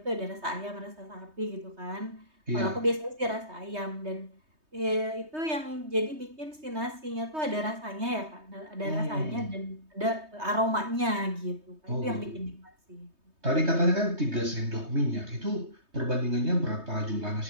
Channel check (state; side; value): late; left; 3.2 ms